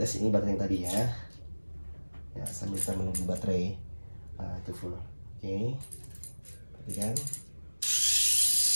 ini baterai yang tadi ya. Ya, sambil kita menunggu baterai itu full. Oke, perhatikan.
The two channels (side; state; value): both; inverted; correlation -1.00